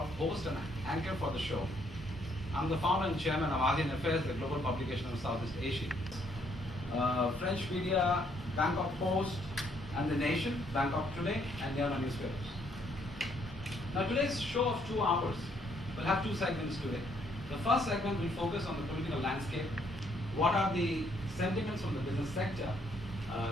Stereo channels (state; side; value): normal; both; correlation 0.69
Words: host and anchor for the show. I'm the founder and chairman of ASEAN Affairs, the global publication of Southeast Asia. French media, Bangkok Post, and The Nation, Bangkok Today, and the other newspapers. Now today's show of 2 hours will have 2 segments today. The first segment will focus on the political landscape. What are the sentiments from the business sector